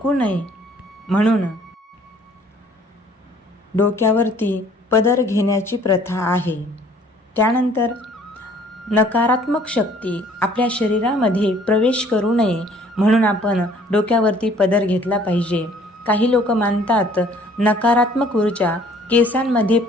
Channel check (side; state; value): both; normal; correlation 0.57